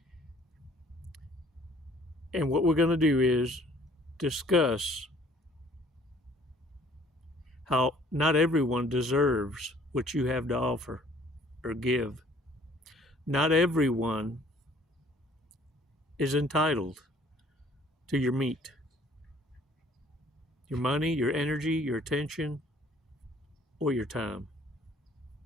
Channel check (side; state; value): both; normal; correlation 0.57